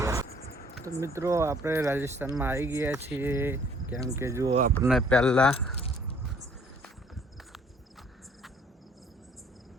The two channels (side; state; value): both; normal; correlation 0.59